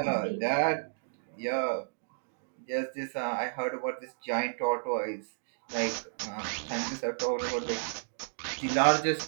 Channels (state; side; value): silent; left; digital silence